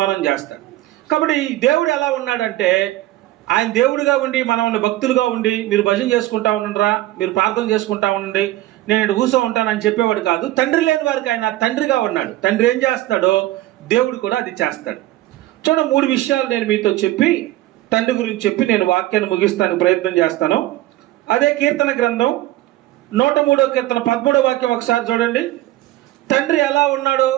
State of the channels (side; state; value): left; quieter; 16.1 dB